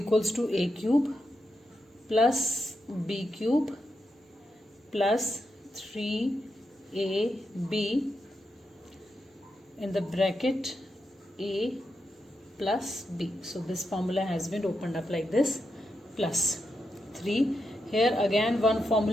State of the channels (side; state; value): both; normal; correlation 0.85